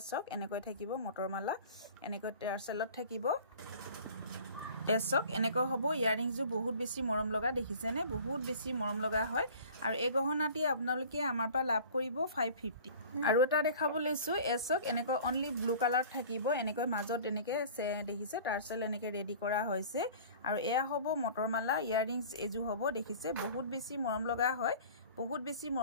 চক এনেকৈ থাকিব মটৰমালা এনেকৈ টাৰ্চেলত থাকিব এচক এনেকৈ হ'ব ইয়াৰিংসও বহুত বেছি মৰম লগা দেখিছেনে বহুত বেছি মৰম লগা হয় আৰু এই গহনাটি আপোনালোকে আমাৰ পৰা লাভ কৰিব 550 আৰু এটা দেখাব লৈছোঁ এচক এনেকৈ অনলি ব্লু কালাৰ থাকিব এনেকৈ মাজত এনেকৈ দেখিছে টাৰ্চেল এনেকৈ ৰেডি কৰা হৈছে আৰু এয়া হ'ব মটৰমালা ইয়াৰিংস এজু হ'ব দেখিছে বহুত বেছি মৰম লগা হয় বহুত বেছি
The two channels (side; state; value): both; inverted; correlation -0.44